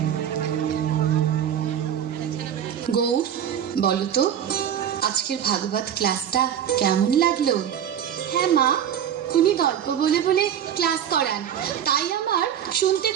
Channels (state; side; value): quieter; left; 9.5 dB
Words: গৌর বলো তো আজকের ভাগবত ক্লাসটা কেমন লাগলো? হ্যাঁ মা, উনি গল্প বলে বলে ক্লাস করান, তাই আমার শুনতে